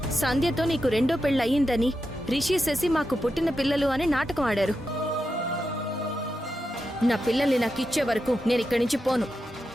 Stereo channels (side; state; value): both; normal; correlation 0.88